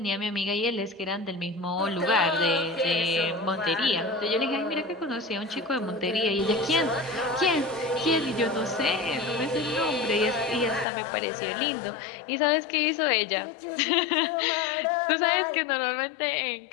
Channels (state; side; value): drops out; right; at 10.9 s